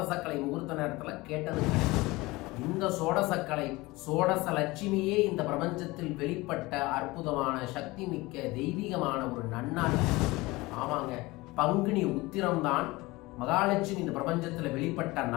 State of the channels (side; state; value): right; quieter; 21.5 dB